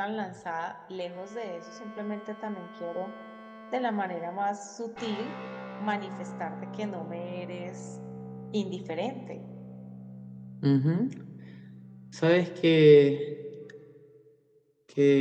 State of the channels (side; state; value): both; identical; correlation 1.00